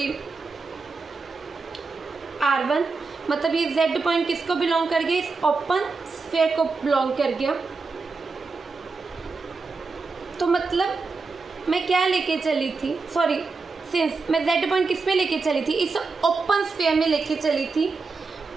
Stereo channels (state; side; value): quieter; left; 4.3 dB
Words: R1, मतलब ये z पॉइंट किसको बिलोंग कर गया, इस ओपन स्फीयर को बिलोंग कर गया। तो मतलब मैं क्या लेके चली थी, सिंस मैं z पॉइंट किस में लेके चली थी, इस ओपन स्फीयर में लेके चली थी